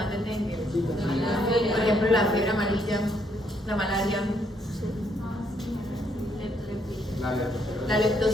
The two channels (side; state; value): both; normal; correlation 0.72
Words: del dengue? Por ejemplo, la fiebre amarilla, la malaria, la